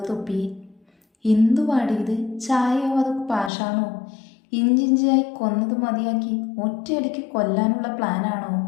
തുപ്പി. എന്തുവാടി ഇത്? ചായയോ അത് പാഷാണോ? ഇഞ്ചിഞ്ചായി കൊന്നത് മതിയാക്കി ഒറ്റയടിക്ക് കൊല്ലാനുള്ള പ്ലാനാണോ?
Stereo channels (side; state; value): right; drops out; at 3.5 s